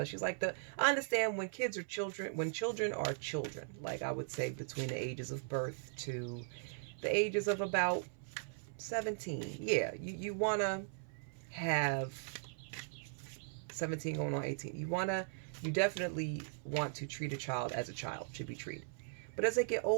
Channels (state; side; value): silent; left; 52 dB below the other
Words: like I understand when kids are children, when children are children, like I would say between the ages of birth to the ages of about 17. Yeah, you want to have 17 going on 18. You definitely want to treat a child as a child should be treated. But as they get